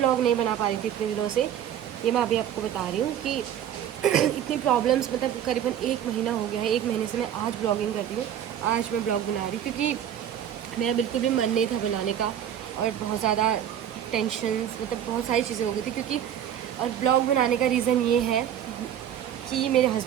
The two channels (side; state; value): left; quieter; 10.0 dB